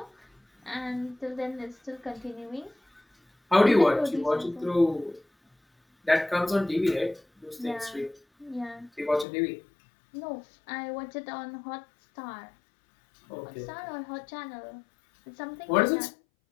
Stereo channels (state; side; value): drops out; right; at 9.2 s